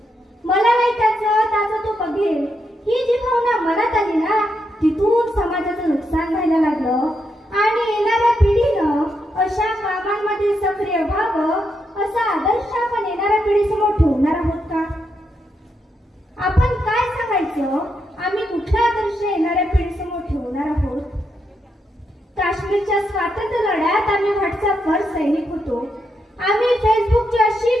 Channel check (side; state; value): both; normal; correlation 0.82